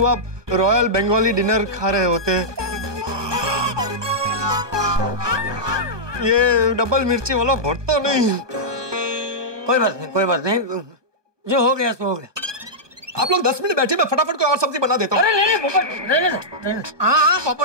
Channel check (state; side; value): late; left; 1.2 ms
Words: रॉयल बंगाली डिनर खा रहे होते। ये डबल मिर्ची वाला भरता नहीं। कोई बात नहीं। जो हो गया सो हो गया। आप लोग 10 मिनट बैठे, मैं फटाफट कोई और सब्जी बना देता हूँ। अरे नहीं पोपट, रहने। हाँ